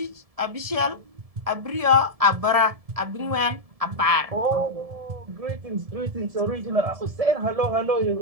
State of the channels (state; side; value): late; left; 1.7 ms